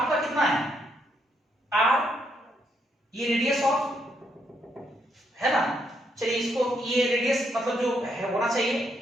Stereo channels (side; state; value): both; normal; correlation 0.76